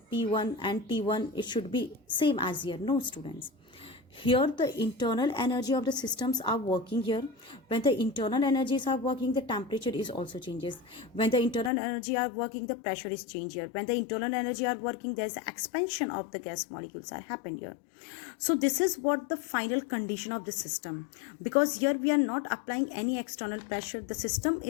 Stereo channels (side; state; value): right; drops out; at 11.7 s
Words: P1 and T1, it should be same as here. No, students. Here the internal energy of the systems are working here. When the internal energies are working, the temperature is also changes. When the internal energy are working, the pressure is changed here. When the internal energy are working, there is expansion of the gas molecules are happened here. So this is what the final condition of the system, because here we are not applying any external pressure. The system